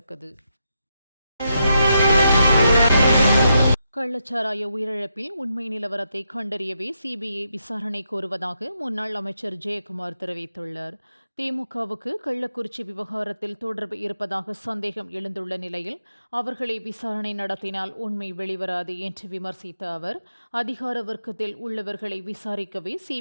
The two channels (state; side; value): inverted; both; correlation -0.82